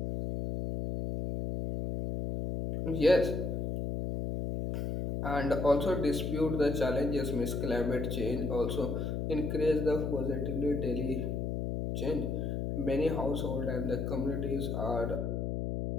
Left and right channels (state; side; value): noise; left; hum, 1 dB below the sound